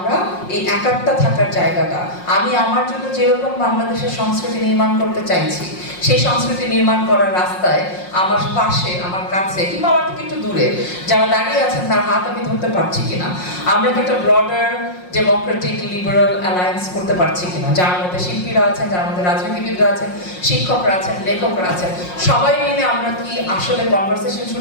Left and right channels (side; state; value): right; late; 5.6 ms